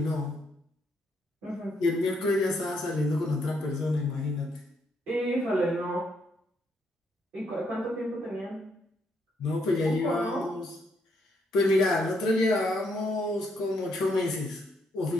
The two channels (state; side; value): normal; both; correlation 0.74